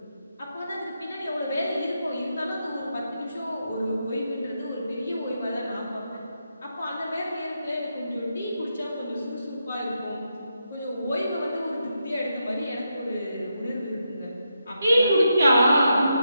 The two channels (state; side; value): inverted; both; correlation -0.84